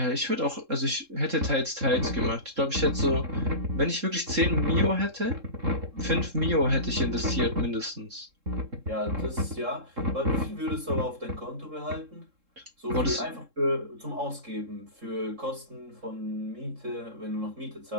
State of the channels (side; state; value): left; late; 3.7 ms